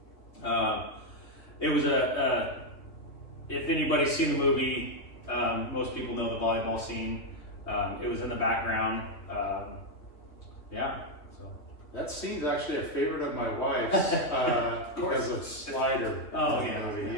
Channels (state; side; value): late; right; 2.9 ms